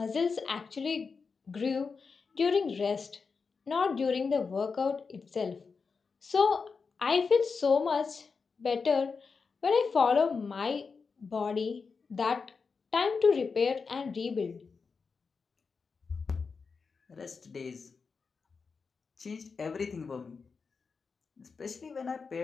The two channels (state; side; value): quieter; right; 5.0 dB